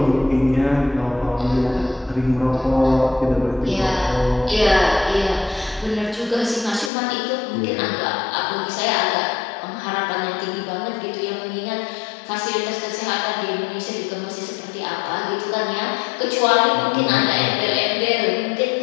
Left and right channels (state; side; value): drops out; right; at 6.9 s